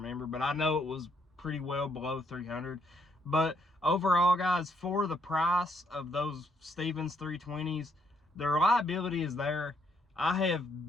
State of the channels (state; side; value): normal; both; correlation 0.71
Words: but I know it was pretty well below $300. But overall, guys, for the price of those Stevens 320s, the reliability is there. I